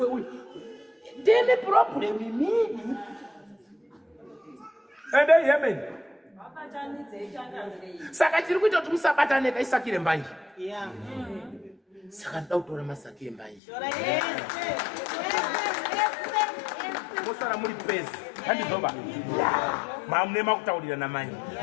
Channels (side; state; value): right; drops out; at 13.6 s